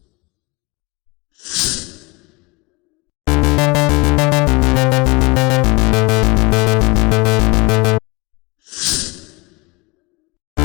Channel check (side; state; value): right; quieter; 26.0 dB